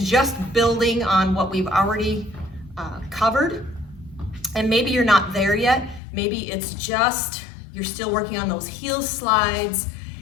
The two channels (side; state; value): right; drops out; at 6.0 s